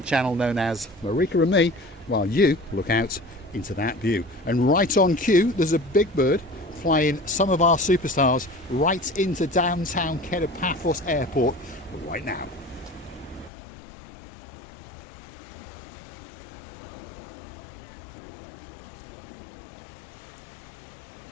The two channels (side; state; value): right; drops out; at 13.5 s